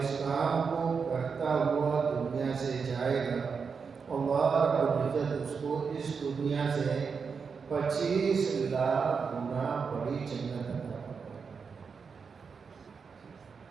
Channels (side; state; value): left; quieter; 5.6 dB